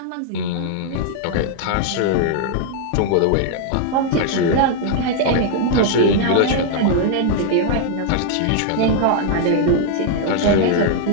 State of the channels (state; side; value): different; both; correlation -0.01